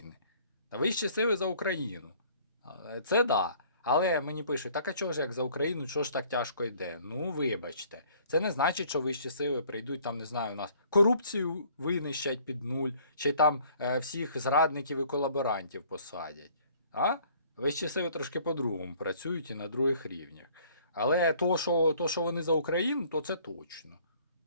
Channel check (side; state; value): both; inverted; correlation -0.57